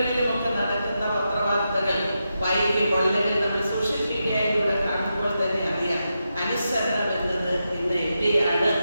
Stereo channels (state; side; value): inverted; both; correlation -0.87